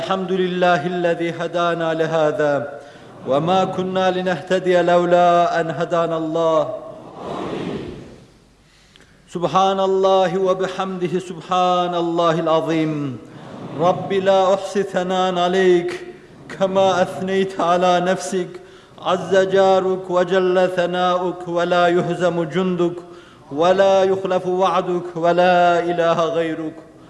hedâna lihâzâ ve mâ kunnâ linehtediye levlâ en hedânallâh. Subhanallahi ve bihamdihi subhanallahil azim. Rabbi la uhsi thanan aleyk kema ethneyte ala nefsik. Azze caruk ve celle thanâuk ve la yuhzemu cunduk ve la yuhlefu va'duk ve la ilahe gayruk.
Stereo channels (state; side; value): identical; both; correlation 1.00